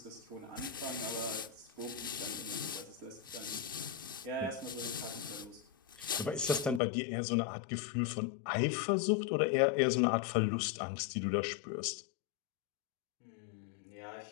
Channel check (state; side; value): drops out; right; at 6.8 s